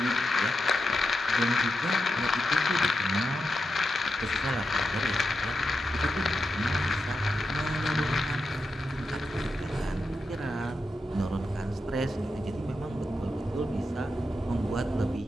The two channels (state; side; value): normal; both; correlation 0.87